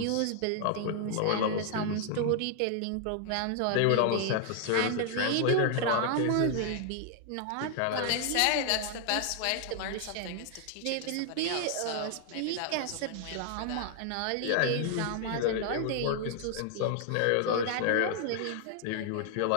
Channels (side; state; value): both; different; correlation 0.00